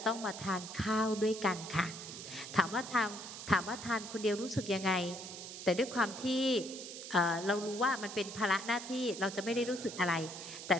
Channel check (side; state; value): right; noise; hiss, 10 dB below the sound